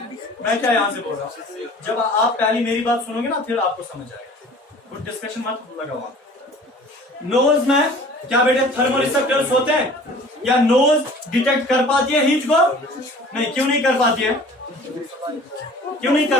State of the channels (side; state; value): both; normal; correlation 0.46